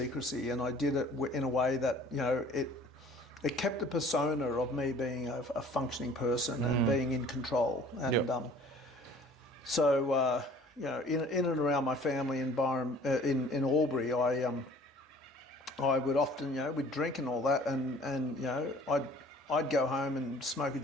and I did it in a way that it kept the persona of me being a functioning person and being in control. And so in and around my family environment in Albury, I would often, we'd drink and all that, and I'd go home and smoke a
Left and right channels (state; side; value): normal; both; correlation 0.51